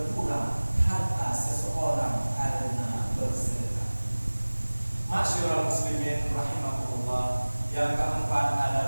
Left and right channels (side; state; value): both; inverted; correlation -1.00